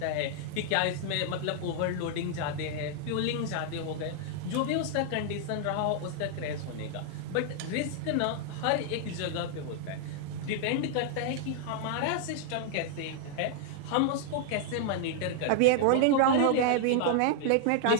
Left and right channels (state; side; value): different; both; correlation 0.00